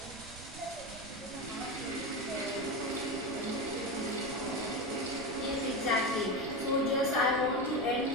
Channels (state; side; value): noise; right; rumble, 16 dB below the sound